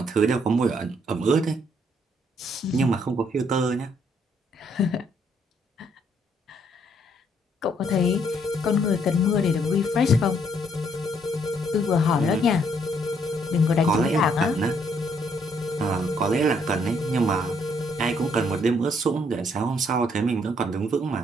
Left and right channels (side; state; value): both; normal; correlation 0.69